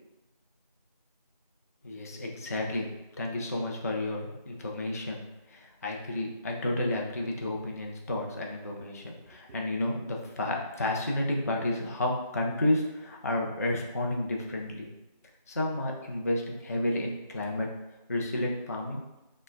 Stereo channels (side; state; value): both; inverted; correlation -0.72